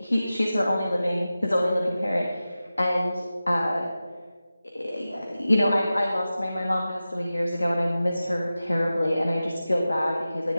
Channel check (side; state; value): both; inverted; correlation -0.95